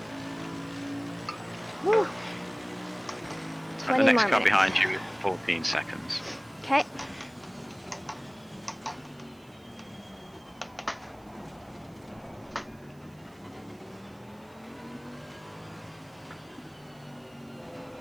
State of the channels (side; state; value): right; noise; hiss, 30 dB below the sound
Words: Whew. The 20 next more car minutes. behind you is 14 seconds. Okay.